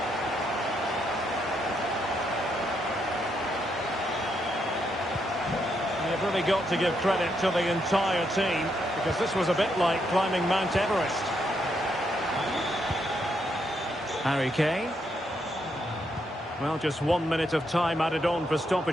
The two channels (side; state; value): both; normal; correlation 0.78